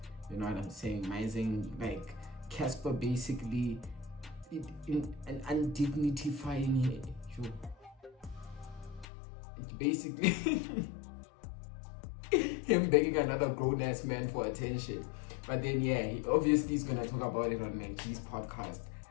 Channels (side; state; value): right; drops out; at 9.1 s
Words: You know what I'm saying? Mising, like Casper basically and undignifying it. It's basically him begging another grown-ass man for attention. But then he obviously is gonna talk about it on Mankey's podcast.